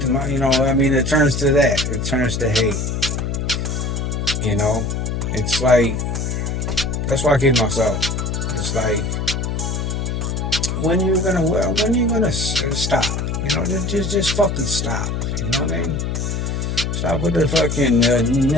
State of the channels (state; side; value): noise; left; hum, 1 dB below the sound